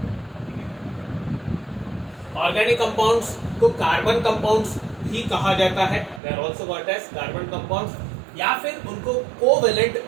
Organic compounds को carbon compounds भी कहा जाता है, they are also called as carbon compounds, या फिर उनको covalent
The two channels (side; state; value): left; drops out; at 6.2 s